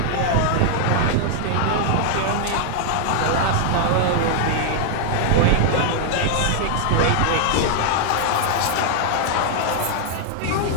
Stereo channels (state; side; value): different; both; correlation 0.00